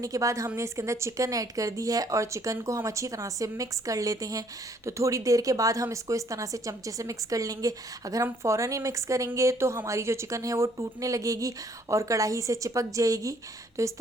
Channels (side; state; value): both; normal; correlation 0.63